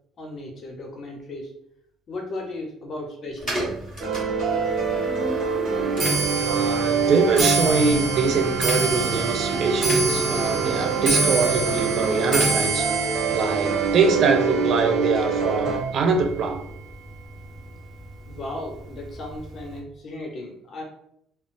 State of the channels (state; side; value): quieter; left; 4.0 dB